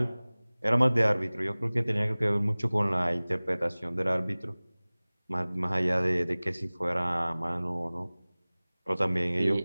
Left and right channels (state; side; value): inverted; both; correlation -1.00